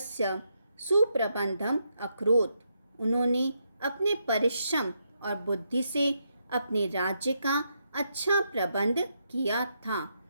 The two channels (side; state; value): both; inverted; correlation -0.80